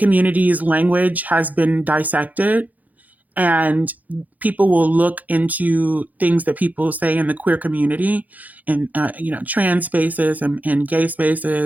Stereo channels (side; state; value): left; late; 0.080 ms